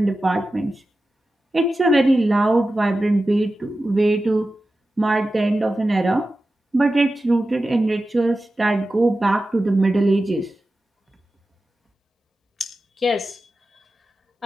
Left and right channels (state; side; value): normal; both; correlation 0.93